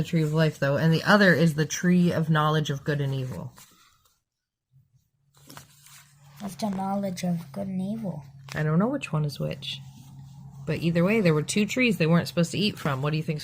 tree of life, though, and the other is the tree of knowledge of good and evil. What's the knowledge of good and evil? I don't know which one is which. But either way, there were two trees they weren't supposed to eat from. What do you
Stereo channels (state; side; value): identical; both; correlation 1.00